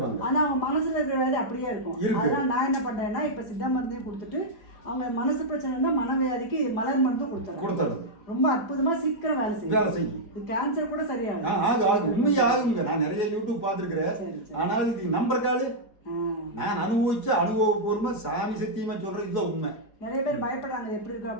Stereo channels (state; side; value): late; right; 4.8 ms